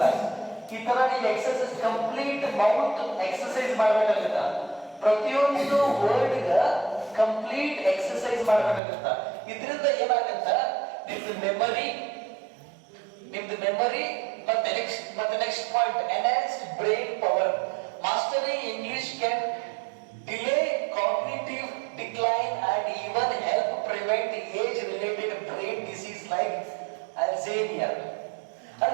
ಈ ತರ ನೀವು ಎಕ್ಸರ್ಸೈಸ್ ಕಂಪ್ಲೀಟ್ ಮೌತ್ ಎಕ್ಸರ್ಸೈಸ್ ಮಾಡ್ಬೇಕಾಗುತ್ತ. ಪ್ರತಿಯೊಂದು ವರ್ಡ್ ಗ ಕಂಪ್ಲೀಟ್ ಎಕ್ಸರ್ಸೈಸ್ ಮಾಡ್ಬೇಕಾಗುತ್ತ. ಇದರಿಂದ ಏನಾಗತ್ತ, ನಿಮ್ದು ಮೆಮರಿ ಮತ್ತೆ next point, enhanced brain power. Mastering English can delay cognitive decline and even help prevent age related brain disease like Alzheimer.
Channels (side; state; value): left; drops out; at 8.8 s